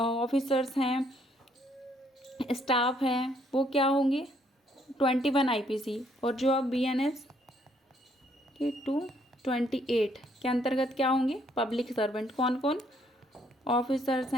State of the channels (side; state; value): both; normal; correlation 0.68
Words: हैं, स्टाफ हैं, वो क्या होंगे 21 IPC, और जो अब BNS के 228 के अंतर्गत क्या होंगे पब्लिक सर्वेंट। कौन कौन ऑफिसर्स